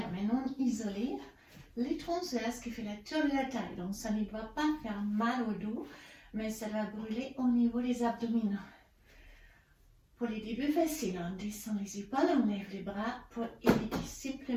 maintenant, isolez les transverses qui fait la tour de la taille. Donc ça ne doit pas faire mal au dos, mais ça va brûler au niveau des abdominaux. Pour les débuts faciles, on descend les épaules, on lève les bras pour éviter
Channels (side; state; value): both; identical; correlation 1.00